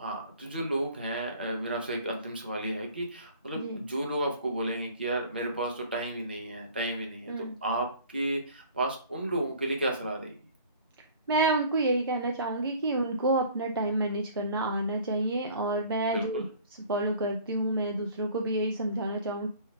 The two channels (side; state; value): both; inverted; correlation -0.49